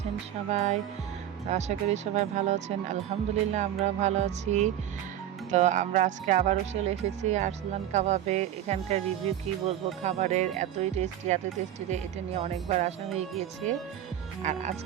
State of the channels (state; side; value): quieter; left; 11.4 dB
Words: সবাই? তো আশা করি সবাই ভালো আছেন। আলহামদুলিল্লাহ আমরাও ভালো আছি। তো আমরা আজকে আবারও চলে এসেছি আরসালান কাবাবে। এখানকার রিভিউ কি বলবো, খাবারের এতই টেস্টি যে এটা নিয়ে অনেকবার আসা হয়ে গিয়েছে। আর